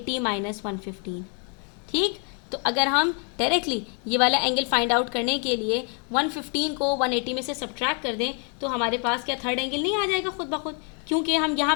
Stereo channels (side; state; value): right; quieter; 39.5 dB